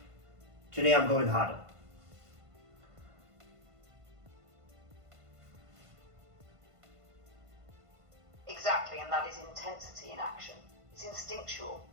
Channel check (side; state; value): left; late; 1.5 ms